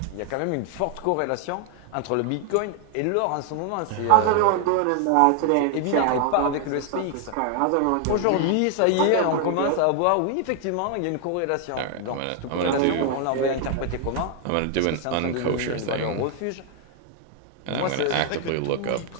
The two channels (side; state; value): both; different; correlation 0.00